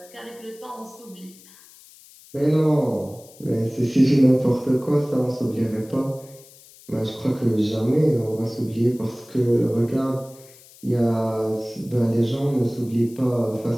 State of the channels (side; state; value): left; noise; hiss, 23 dB below the sound